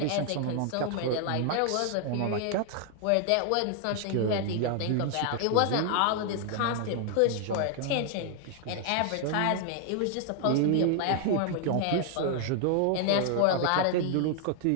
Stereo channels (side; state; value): both; different; correlation 0.00